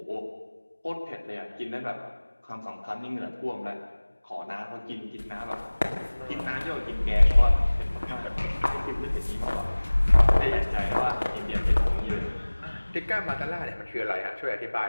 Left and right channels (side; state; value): both; inverted; correlation -1.00